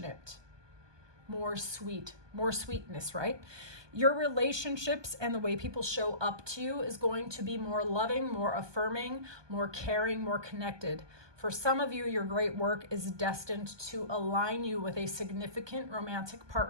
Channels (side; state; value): left; late; 1.2 ms